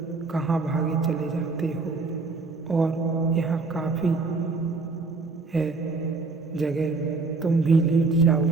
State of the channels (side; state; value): left; quieter; 3.9 dB